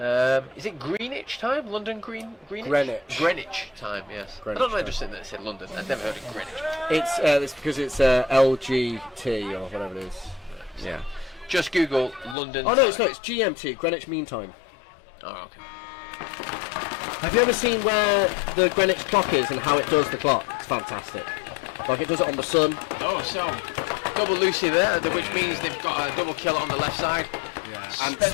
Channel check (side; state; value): right; drops out; at 12.4 s